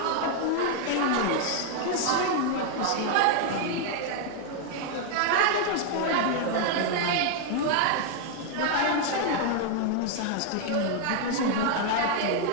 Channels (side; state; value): both; different; correlation 0.00